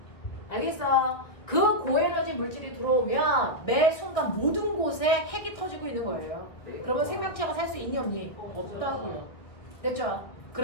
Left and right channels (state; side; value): late; right; 1.8 ms